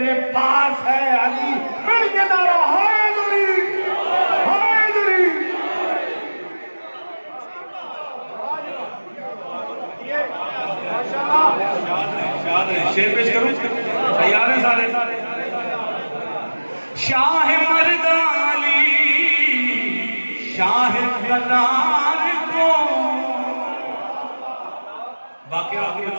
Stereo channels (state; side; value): inverted; both; correlation -1.00